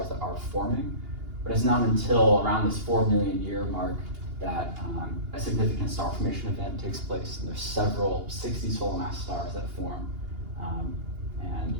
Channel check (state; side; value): late; left; 2.8 ms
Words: that are forming, but it's not until around this 4 million year mark that a significant star formation event takes place, and there's several 60 solar mass stars that form and